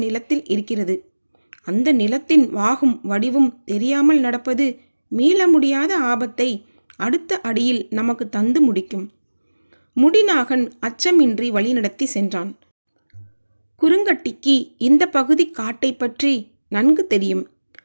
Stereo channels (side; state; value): both; inverted; correlation -1.00